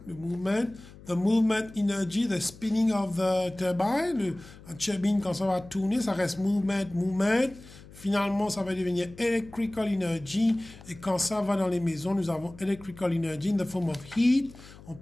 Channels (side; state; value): left; noise; hum, 19 dB below the sound